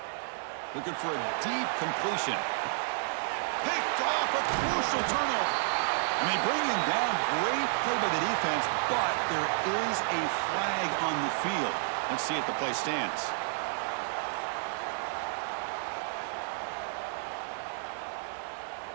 Looking for a deep completion. Picked off, a crucial turnover. I mean, bring him down. Great play by the defense, but there is a flag on the field. Let's see if the play stands.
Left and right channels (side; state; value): left; silent; digital silence